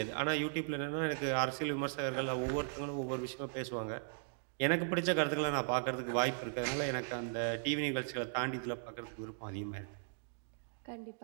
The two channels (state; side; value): silent; left; digital silence